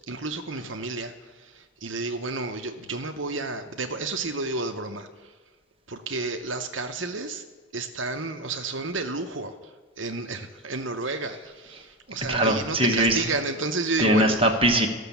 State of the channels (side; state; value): both; normal; correlation 0.15